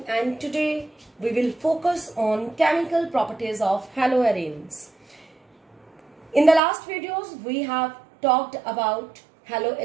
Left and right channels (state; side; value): drops out; left; at 6.6 s